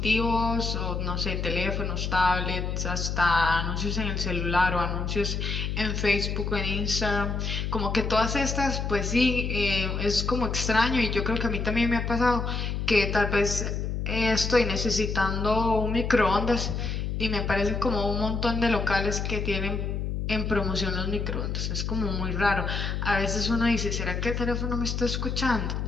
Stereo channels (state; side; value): noise; left; hum, 2 dB below the sound